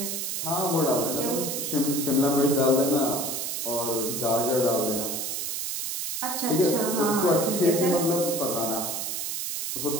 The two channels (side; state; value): right; noise; hiss, 3 dB below the sound